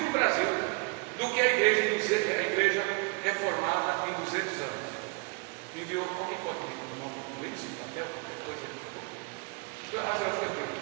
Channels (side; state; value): left; quieter; 30.8 dB